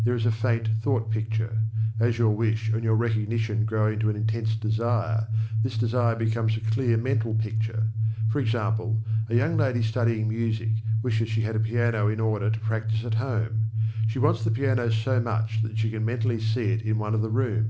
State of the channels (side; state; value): both; identical; correlation 1.00